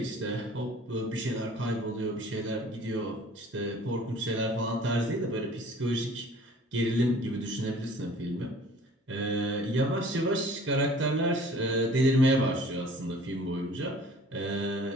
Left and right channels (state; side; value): normal; both; correlation 0.50